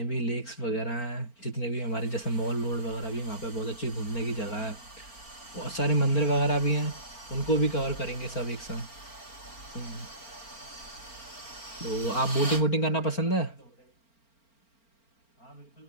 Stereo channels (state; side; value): late; right; 4.4 ms